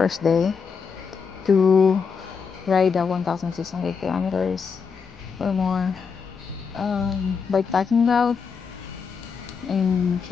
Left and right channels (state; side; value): quieter; right; 5.8 dB